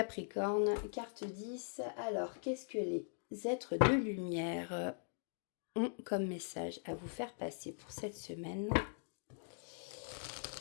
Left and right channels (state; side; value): silent; right; digital silence